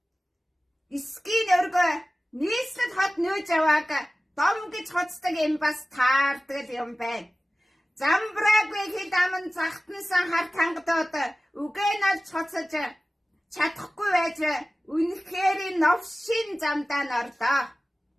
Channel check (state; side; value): normal; both; correlation 0.96